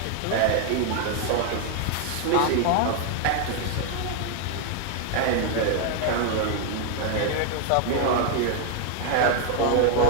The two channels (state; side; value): different; both; correlation 0.00